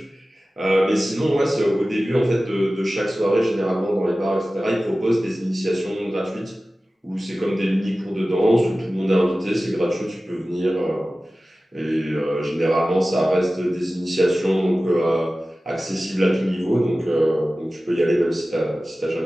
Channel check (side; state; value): both; normal; correlation 0.96